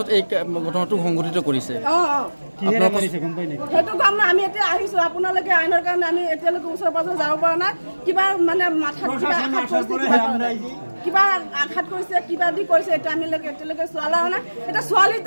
এই ঘটনাটো সংঘটিত কৰিছে কিহেৰে কৰিছে গম পাই নেকি সেইটো কাম না আমি এতিয়া আহিছো আপোনালোকে আইনৰ কাৰণে আমি এতিয়ালৈকে ওচৰ পাজৰ যাব পৰা নাই কিবা মানে মাথাত কিবা আঘাত কৰিছে কিবা দি কৰিছে এটা আমি এতিয়ালৈকে চোৱালা নাই এটা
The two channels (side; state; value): both; inverted; correlation -1.00